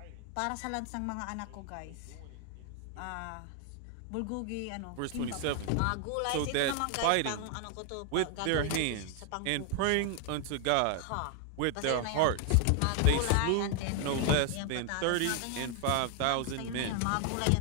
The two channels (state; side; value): different; both; correlation 0.00